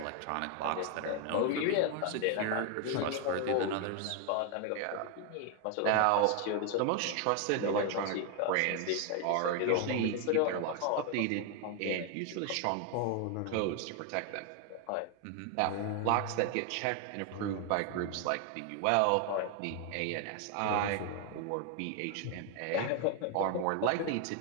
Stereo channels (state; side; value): different; both; correlation 0.01